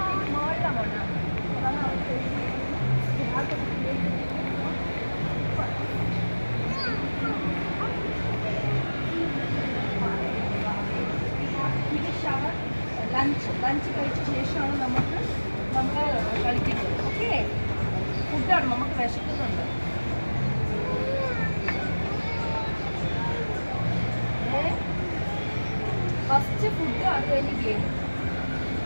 അത് കഴിഞ്ഞ് ഗെയിം.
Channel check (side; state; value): both; inverted; correlation -1.00